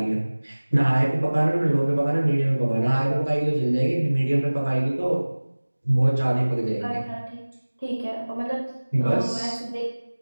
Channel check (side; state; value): both; inverted; correlation -1.00